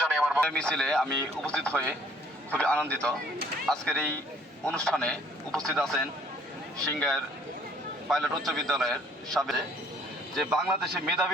জানাই। আমার মিছিলে আমি উপস্থিত হয়ে খুবই আনন্দিত। আজকের এই অনুষ্ঠানে উপস্থিত আছেন সিংগাইর পাইলট উচ্চ বিদ্যালয়ের সাবেক, যে বাংলাদেশের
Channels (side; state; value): both; normal; correlation 0.59